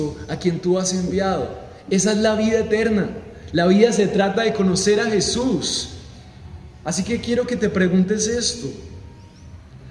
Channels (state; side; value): identical; both; correlation 1.00